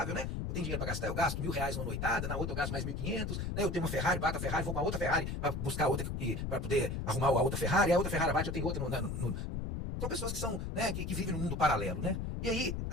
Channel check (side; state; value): left; noise; rumble, 3 dB below the sound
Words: né? Eu tenho dinheiro pra gastar, eu gasto R$1.000 numa noitada, na outra eu gasto mais 1.500, né? Eu tenho uma Ferrari, bato a Ferrari, vou com a outra Ferrari pra buscar outra, pra poder arrumar a outra Ferrari, a outra Ferrari bate, eu tenho outra São pessoas que são, né, que vivem num mundo paralelo, né? E aí,